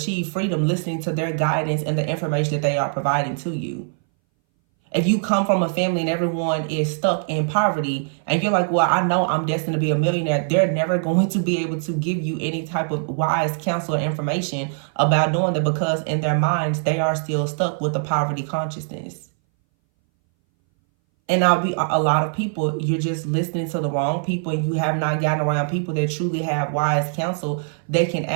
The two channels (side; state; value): left; silent; 61 dB below the other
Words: freedom listening to their guidance and the information that they are providing to you. If you come from a family and everyone is stuck in poverty and you're like, well, I know I'm destined to be a millionaire, they're never going to be able to give you any type of wise counsel or information about doing that, because in their minds, they are still stuck with the poverty consciousness. And I'll be a lot of people, you're just listening to the wrong people, and you have not gotten around people that truly have wise counsel. They can